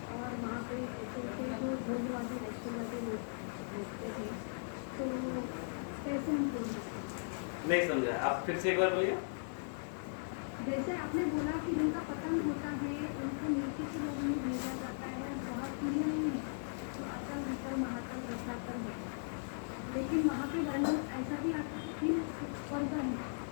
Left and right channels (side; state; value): right; silent; 53 dB below the other